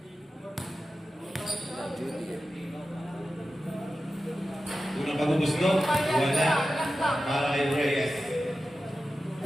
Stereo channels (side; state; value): both; normal; correlation 0.93